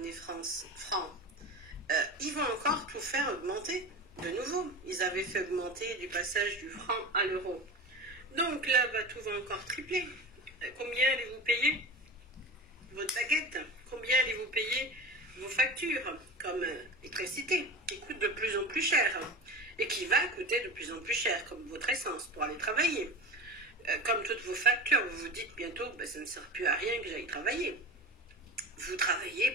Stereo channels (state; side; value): normal; both; correlation 0.30